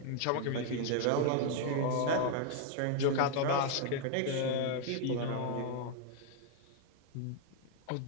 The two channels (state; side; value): different; both; correlation 0.00